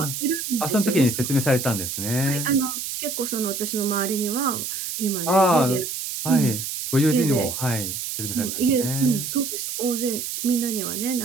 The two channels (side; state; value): right; noise; hiss, 5 dB below the sound